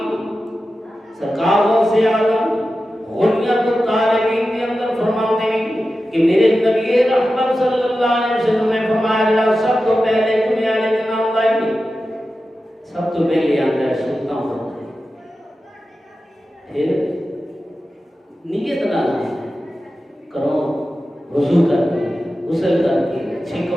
سرکار غوث اعظم غنیت الطالبین کے اندر فرماتے ہیں کہ میرے نبی رحمت صلی اللہ علیہ وسلم نے فرمایا اللہ سب تو پہلے جمعے والے دن آؤں گا سب تو پہلے آتا ہے سلطان ہوتا ہے پھر نیت نہ کرو وضو کر کے غسل کر کے اچھے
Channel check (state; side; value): normal; both; correlation 0.93